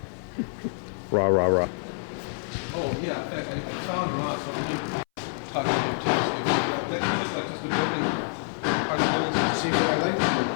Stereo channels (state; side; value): silent; right; 60 dB below the other